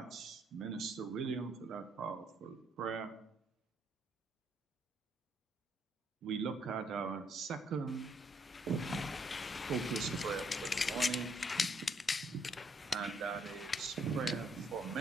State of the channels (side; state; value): both; normal; correlation 0.70